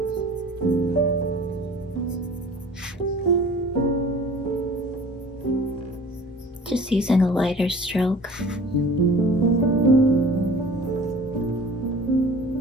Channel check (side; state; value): both; normal; correlation 0.45